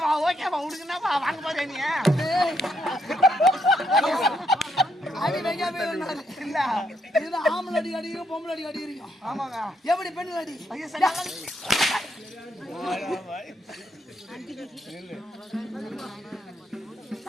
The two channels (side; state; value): both; normal; correlation 0.76